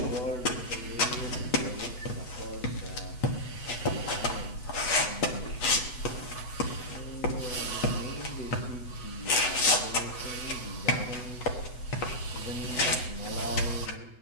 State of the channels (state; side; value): late; right; 8.0 ms